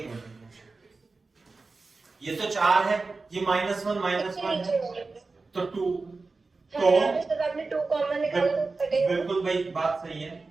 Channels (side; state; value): left; quieter; 3.9 dB